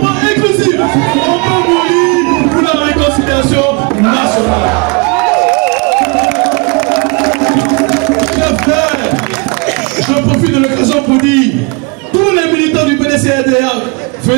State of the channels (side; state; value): left; quieter; 31.0 dB